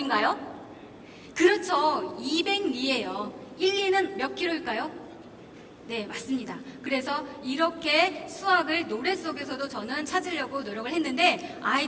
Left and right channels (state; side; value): identical; both; correlation 1.00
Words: 그렇죠. 200리예요. 1리는 몇 킬로일까요? 네, 맞습니다. 그래서 이렇게 수학을 노래 속에서도 저는 찾으려고 노력을 했는데